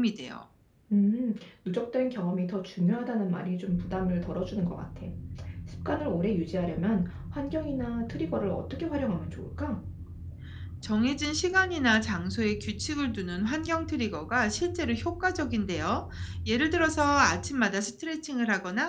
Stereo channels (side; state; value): both; identical; correlation 1.00